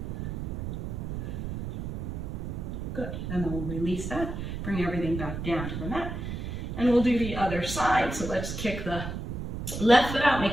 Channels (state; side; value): noise; right; rumble, 5 dB below the sound